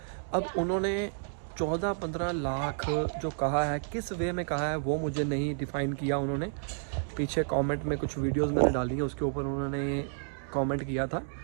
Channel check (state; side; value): silent; left; digital silence